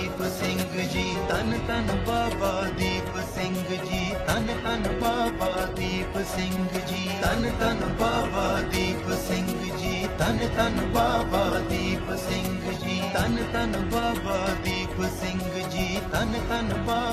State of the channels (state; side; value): identical; both; correlation 1.00